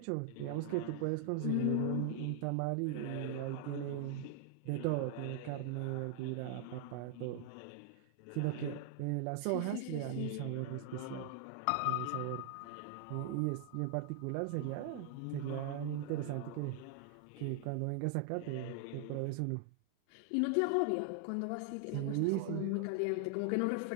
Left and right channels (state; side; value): different; both; correlation 0.00